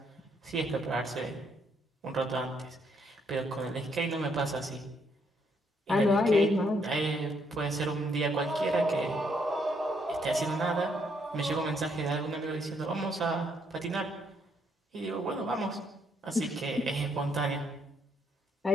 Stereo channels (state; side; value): normal; both; correlation 0.72